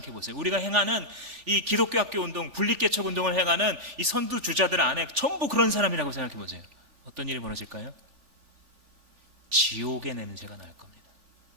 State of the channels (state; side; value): late; left; 3.4 ms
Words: 보세요. 우리가 행하는 이 기독교 학교 운동, 분립개척 운동을 행하는 이 선두주자들 안에 전부 그런 사람이라고 생각해 보세요. 어떤 일이 벌어질까요? 지옥의 냄새가 날 겁니다.